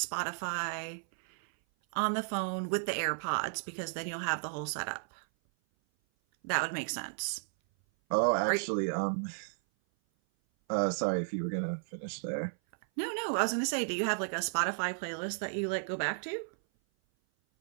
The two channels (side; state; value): left; silent; 55 dB below the other